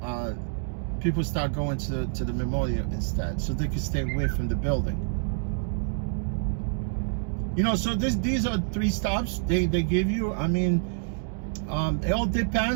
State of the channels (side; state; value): left; silent; digital silence